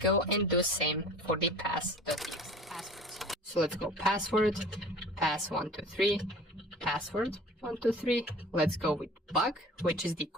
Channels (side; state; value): both; normal; correlation 0.43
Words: and do same for the pass.txt passwords. So let's go password, pass123, password123. Let's go with bug, which is the